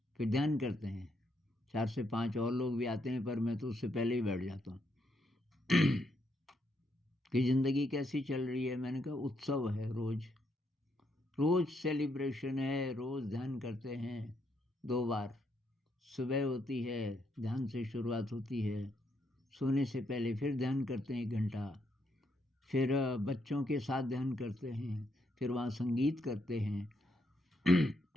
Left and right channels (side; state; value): both; normal; correlation 0.77